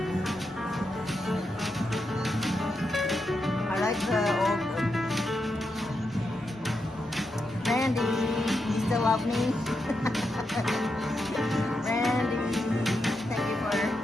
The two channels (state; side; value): normal; both; correlation 0.85